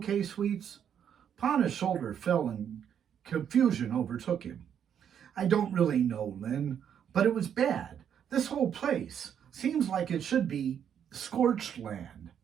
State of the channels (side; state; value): left; quieter; 8.7 dB